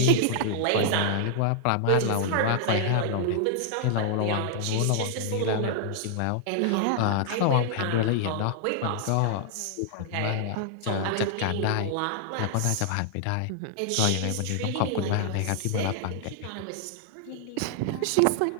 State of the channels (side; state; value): both; different; correlation -0.01